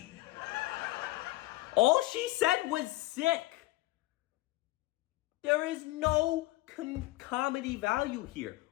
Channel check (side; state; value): right; quieter; 18.8 dB